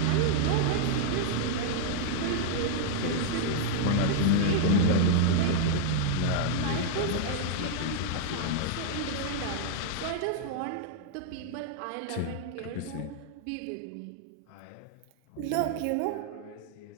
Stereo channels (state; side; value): different; both; correlation -0.01